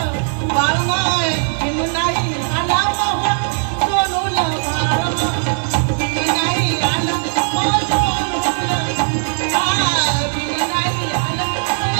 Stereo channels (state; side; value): silent; left; digital silence